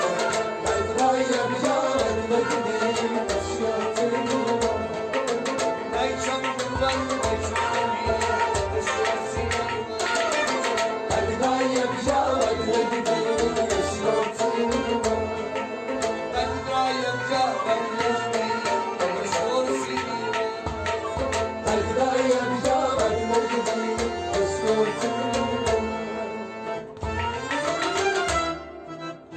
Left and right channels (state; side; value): identical; both; correlation 1.00